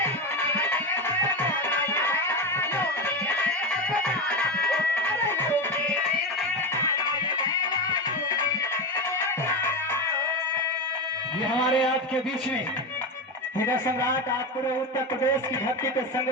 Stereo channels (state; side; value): normal; both; correlation 0.17